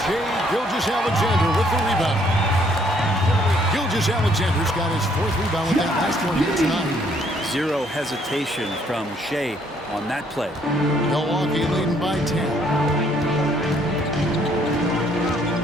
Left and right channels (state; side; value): normal; both; correlation 0.66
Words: Shai Gilgeous-Alexander with the rebound. Gilgeous-Alexander's got his 4th rebound with that last one here tonight. Zero hesitation from Shai on that play. Milwaukee leading by 10.